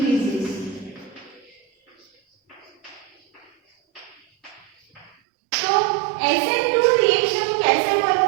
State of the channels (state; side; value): drops out; left; at 5.1 s